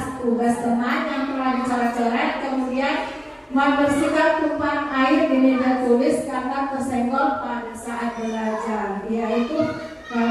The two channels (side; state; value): both; identical; correlation 1.00